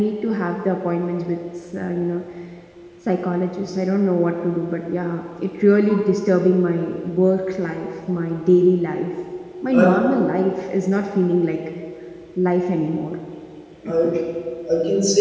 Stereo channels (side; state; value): both; identical; correlation 1.00